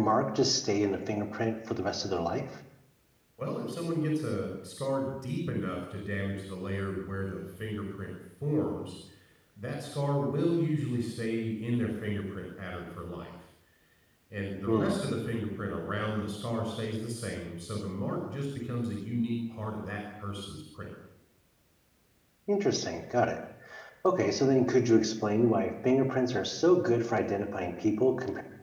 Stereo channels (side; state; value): both; identical; correlation 1.00